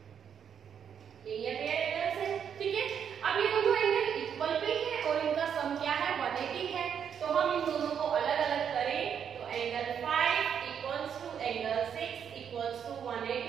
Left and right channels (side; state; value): left; quieter; 8.0 dB